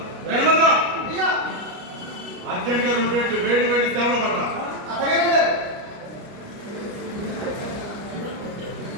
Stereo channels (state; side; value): late; left; 29 ms